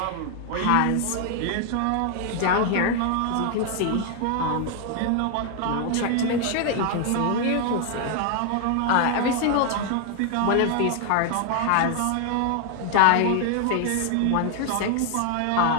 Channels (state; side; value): different; both; correlation 0.00